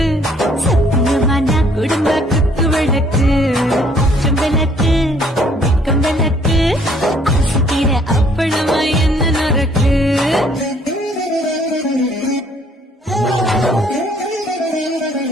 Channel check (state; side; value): normal; both; correlation 0.62